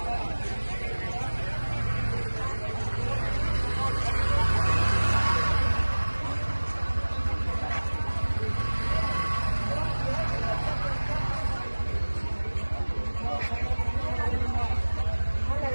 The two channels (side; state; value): both; inverted; correlation -1.00